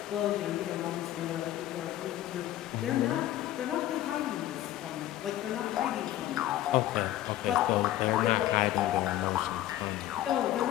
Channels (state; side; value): quieter; right; 13.7 dB